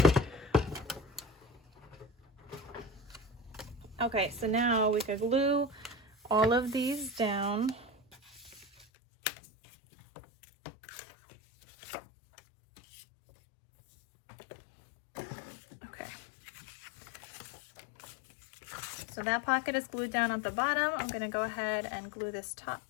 Okay, so now we could glue all of these down. Okay. So that pocket is glued down at the bottom. I'm gonna go ahead and glue this top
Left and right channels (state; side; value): drops out; right; at 8.8 s